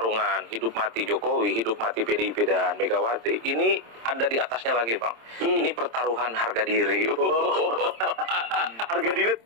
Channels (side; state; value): left; late; 26 ms